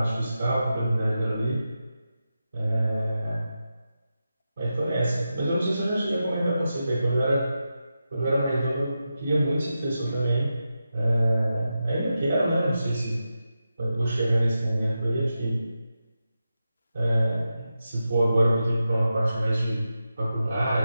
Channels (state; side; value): inverted; both; correlation -0.90